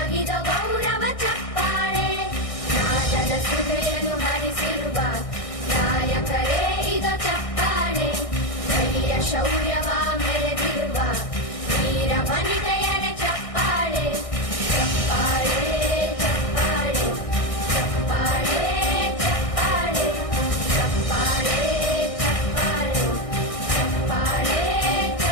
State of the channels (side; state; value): right; late; 1.6 ms